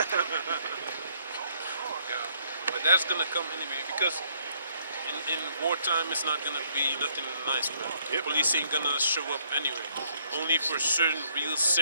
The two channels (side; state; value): both; inverted; correlation -0.68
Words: Yeah. But that's gonna come anyway because in wartime it's not gonna be nothing nice, man. Yep. Police ain't gonna show up anyway. Only for certain real